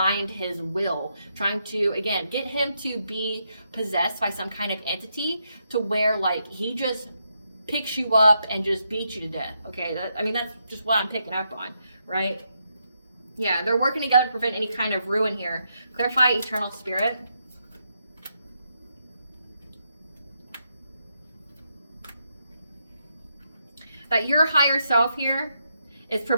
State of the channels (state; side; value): inverted; both; correlation -0.81